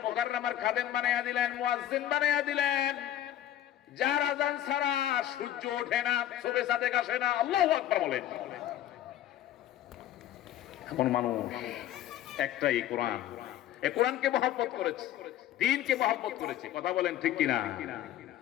মুকাররমার খাদেম বানাইয়া দিলেন, মুয়াজ্জিন বানাইয়া দিলেন, যার আযান ছাড়া সূর্য ওঠে না, শোবে সাদেক আসে না। আল্লাহু আকবার বলেন। এমন মানুষ একটাই কোরআন। এই কোরআনকে মহব্বত করেছে, দ্বীনকে মহব্বত করেছে। কথা বলেন ঠিক কিনা?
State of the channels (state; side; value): quieter; right; 12.1 dB